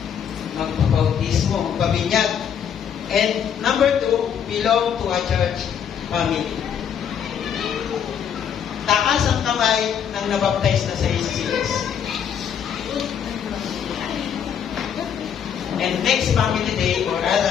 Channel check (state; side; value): quieter; right; 8.2 dB